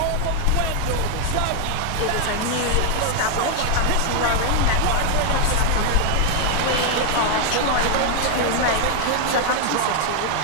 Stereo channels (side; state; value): both; different; correlation 0.00